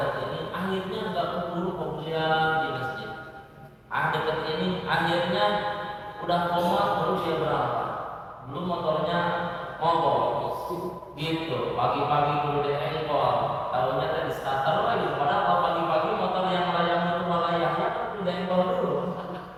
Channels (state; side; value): identical; both; correlation 1.00